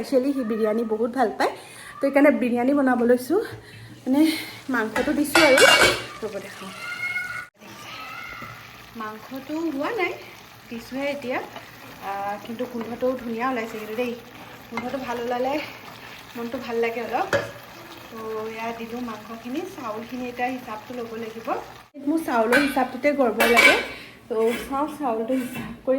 সি বিৰিয়ানী বহুত ভাল পায় তো সেইকাৰণে বিৰিয়ানী বনাব লৈছোঁ মানে মাংসটো দিছোঁ আৰু ৰ'ব দেখাওঁ মাংসটো হোৱা নাই দিছোঁহে এতিয়া কিন্তু গোন্ধটোও ধুনীয়া ওলাইছে কিন্তু দেই গোন্ধটো ভাল ওলালে মনটো ভাল লাগে অলপ তো এয়া দিলোঁ মাংসখিনি চাউলখিনি এতিয়া হিচাপটো ল'ব লাগিব মোৰ চাউলৰ হিচাপটোতে গড়বড় লাগে তো চাওঁ চাউলটো হিচাপ কৰি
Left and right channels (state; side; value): identical; both; correlation 1.00